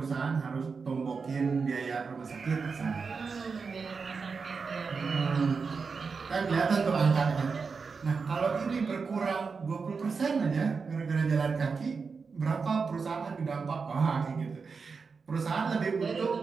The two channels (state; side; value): quieter; left; 5.1 dB